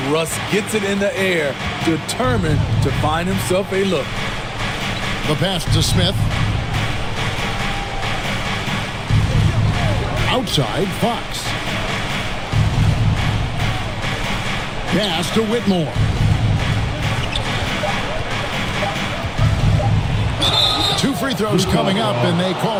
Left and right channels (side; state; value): both; identical; correlation 1.00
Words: Russ gets it in the air, determined to find himself a look. The pass to Smith. Outside, Fox. Pass to Whitmore. Two free throws coming up, and they